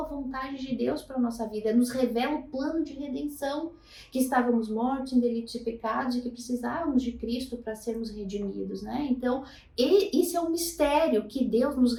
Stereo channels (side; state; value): both; identical; correlation 1.00